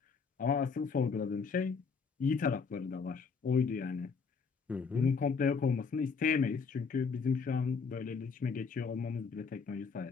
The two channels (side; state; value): right; quieter; 5.3 dB